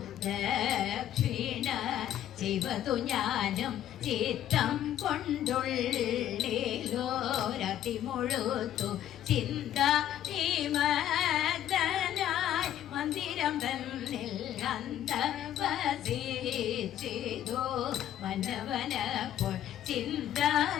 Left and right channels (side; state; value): right; quieter; 11.4 dB